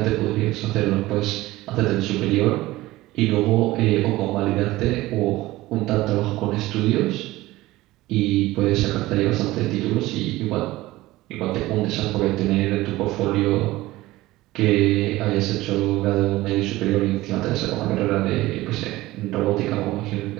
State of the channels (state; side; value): quieter; left; 18.0 dB